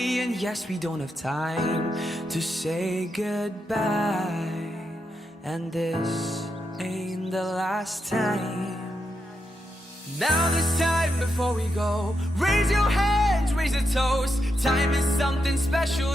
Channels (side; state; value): both; normal; correlation 0.84